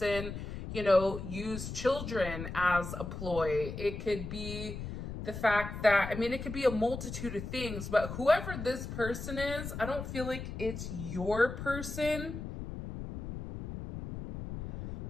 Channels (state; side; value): noise; left; rumble, 7 dB below the sound